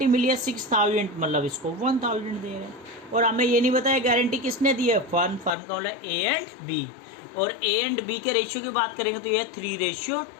मिली है 6,000, मतलब इसको 1,000 दे रहे हैं। और हमें ये नहीं बताया गारंटी किसने दी है, फर्म का मतलब ए एंड बी। और ए एंड बी के रेशियो की बात करेंगे तो ये है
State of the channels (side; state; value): right; drops out; at 5.6 s